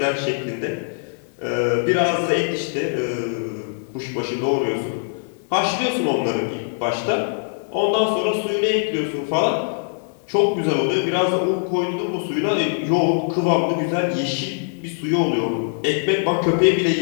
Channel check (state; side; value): silent; right; digital silence